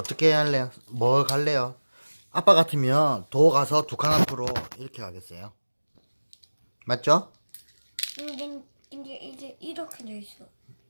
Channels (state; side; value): inverted; both; correlation -1.00